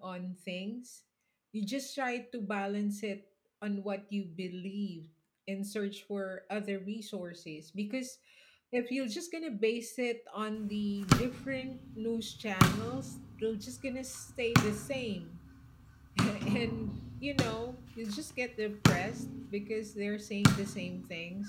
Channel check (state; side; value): identical; both; correlation 1.00